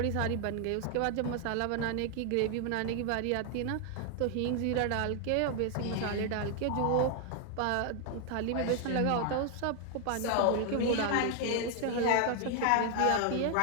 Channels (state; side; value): different; both; correlation 0.00